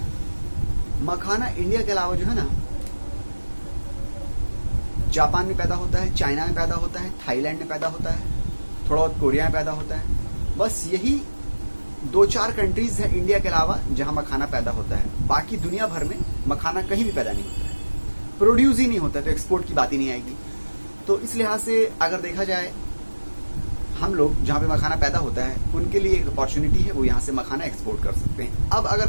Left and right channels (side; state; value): both; inverted; correlation -1.00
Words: मखाना इंडिया के अलावा जो है ना, जापान में पैदा होता है, चाइना में पैदा होता है, थाईलैंड में पैदा होता है, थोड़ा बहुत कोरिया में पैदा होता है। बस यही 2-4 कंट्रीज है इंडिया के अलावा जहां मखाना पैदा होता है। बाकी दुनिया भर में मखाना कहीं भी पैदा नहीं होता है, प्रोड्यूस ही नहीं होता है, तो एक्सपोर्ट की बात ही नहीं आएगी। तो इस लिहाज से अगर देखा जाए, हम लोग जहां पे मखाना पैदा होता है उनके लिए एक अपॉर्चुनिटी है, वो यहाँ से मखाना एक्सपोर्ट कर सकते हैं। अब अगर